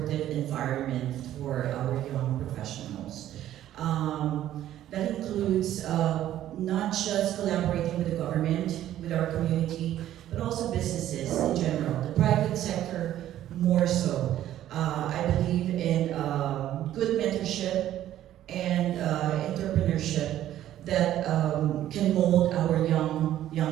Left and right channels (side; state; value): left; quieter; 12.5 dB